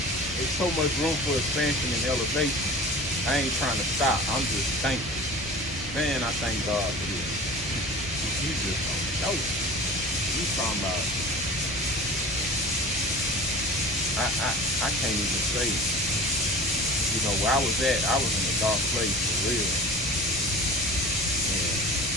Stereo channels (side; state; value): both; normal; correlation 0.38